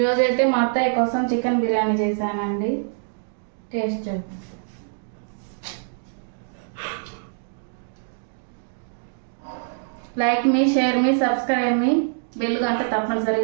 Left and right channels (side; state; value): left; silent; digital silence